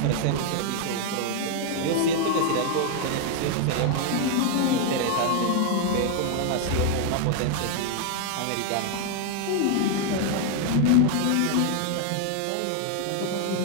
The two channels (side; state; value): both; different; correlation 0.00